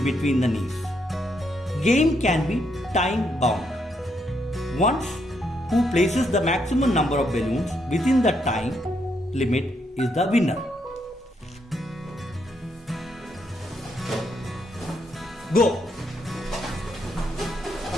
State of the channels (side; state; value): both; normal; correlation 0.76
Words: between the knees. Game can be time bound. Once who places the maximum number of balloons within the time limit is the winner. Go!